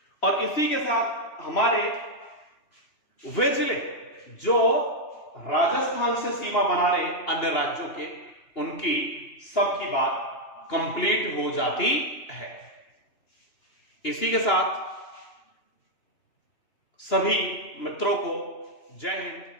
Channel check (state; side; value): late; right; 2.9 ms